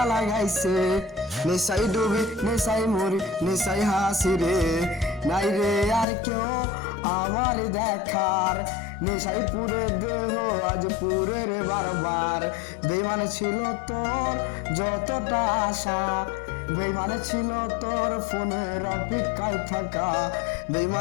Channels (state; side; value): drops out; right; at 6.1 s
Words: লাগাইছে নেশাই ডুবি নেশাই মরি নেশাই হাসি রে নাই রে আর কেউ আমার দেখার নেশাই পুরে দেহ আজ পুরে রে বারবার বেইমান ছিল তোর যতটা আশা বেইমান ছিল তোর ফোনের অপেক্ষায় থাকা